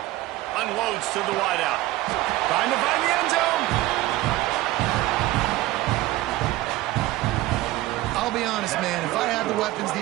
Unloads to the wideout. Trying to find the end zone. I'll be honest, man. If I had the weapons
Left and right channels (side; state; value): left; quieter; 17.1 dB